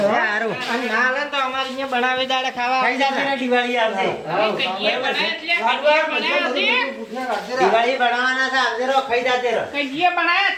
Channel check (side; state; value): both; identical; correlation 1.00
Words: હારું. અને ના હાલે તો અમારે અહીંયા બનાવી દાડે ખાવા ખાઈ જાતે ને દિવાળી આવશે. કઈએ બનાવ્યા એટલે કઈએ બનાવ્યા છે. દિવાળી બનાવવાના છે આવજે રો, ખાઈ જાતે રો. કઈએ બનાવ્યા